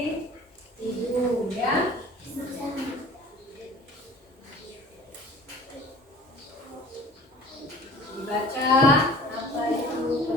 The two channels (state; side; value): normal; both; correlation 0.45